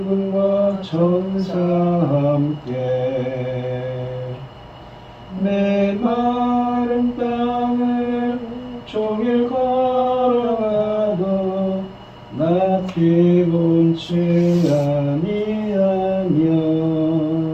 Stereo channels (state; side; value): identical; both; correlation 1.00